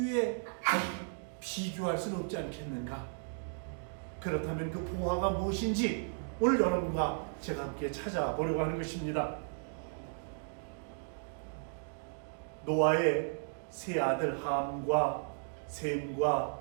비교할 수는 없지 않겠는가. 그렇다면 그 보화가 무엇인지 오늘 여러분과 제가 함께 찾아보려고 하는 것입니다. 노아의 세 아들 함과 셈과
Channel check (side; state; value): left; silent; digital silence